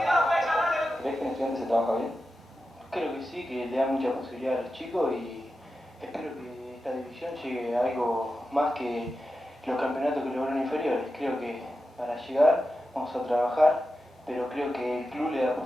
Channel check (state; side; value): normal; both; correlation 0.91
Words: ¿Ves que en Estudiantes se trabaja bien? Creo que sí, que le da mucha posibilidad a los chicos y espero que esta división llegue a algo más que los campeonatos que lograron inferiores. Creo que para llegar vamos a trabajar, pero creo que el club le da